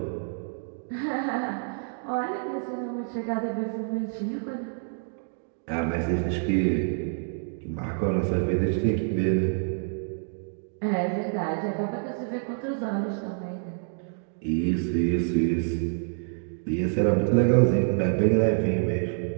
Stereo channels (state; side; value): silent; left; 60 dB below the other